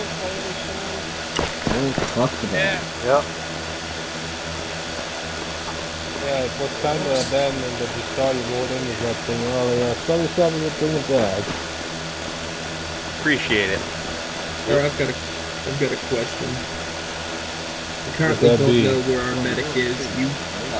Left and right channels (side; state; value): both; identical; correlation 1.00